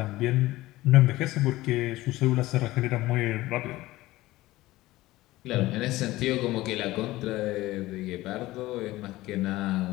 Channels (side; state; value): right; quieter; 17.7 dB